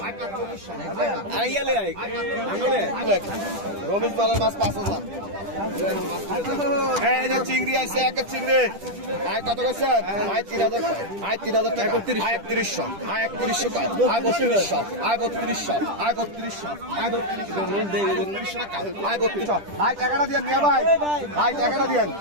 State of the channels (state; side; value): late; left; 10 ms